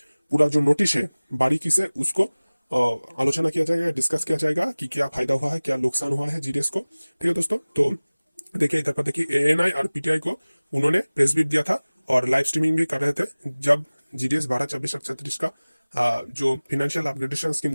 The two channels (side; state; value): both; inverted; correlation -1.00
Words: पूरा जो नोटिस है बारीकी से उसको आलोचना किया जाएगा, डिस्कस किया जाएगा कि क्या फायदा हुआ है, क्या नुकसान हुआ है जीडीएस को। ठीक है दोस्तों, तो देखिए इधर पर देखिए एएनआई और पीटीआई को उन्होंने प्रेस ब्रीफ दिया था और लाइव स्ट्रीमिंग भी कर रहे थे जब जीडीएस 12, 24 और 36 का जो फिनेंशियल अपग्रेडेशन स्कीम